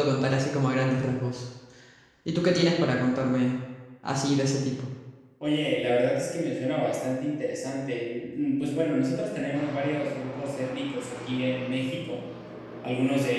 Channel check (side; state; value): both; identical; correlation 1.00